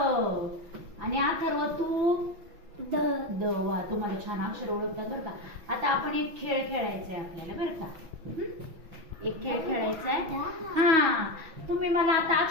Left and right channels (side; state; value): left; late; 5.9 ms